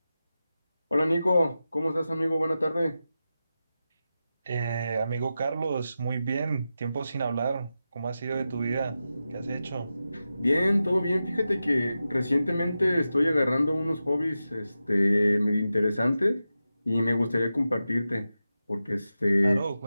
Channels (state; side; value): inverted; both; correlation -0.92